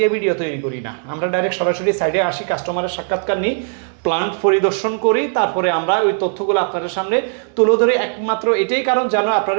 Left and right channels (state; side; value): silent; left; 55 dB below the other